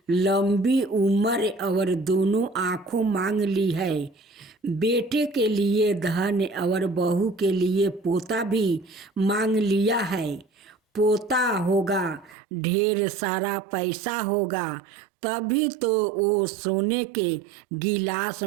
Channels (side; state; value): left; drops out; at 12.4 s